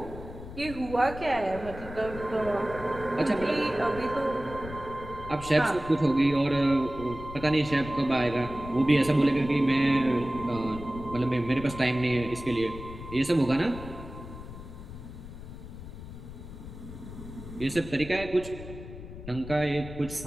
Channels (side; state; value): left; noise; rumble, 12 dB below the sound